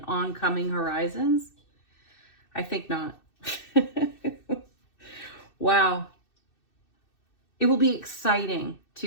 oncoming horizons? I think not. Wow. It will be exciting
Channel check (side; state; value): right; late; 2.6 ms